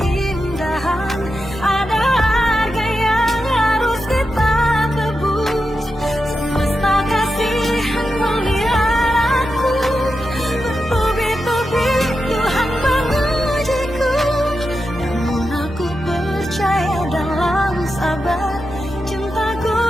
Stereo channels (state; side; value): normal; both; correlation 0.89